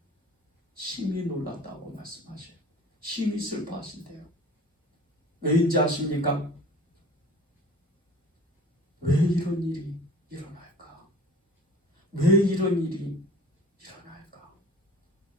심히 놀랐다고 말씀하셔요. 심히 슬퍼하신대요. 왜인지 아십니까? 왜 이런 일이 일어날까? 왜 이런 일이 일어날까?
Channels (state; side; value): normal; both; correlation 0.44